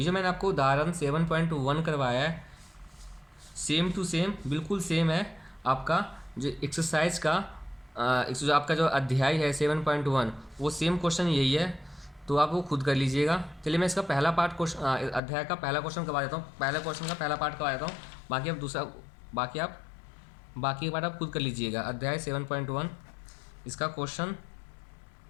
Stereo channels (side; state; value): right; drops out; at 15.2 s